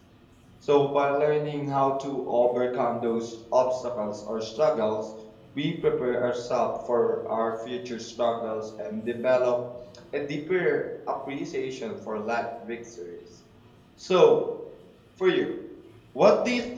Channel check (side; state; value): both; identical; correlation 1.00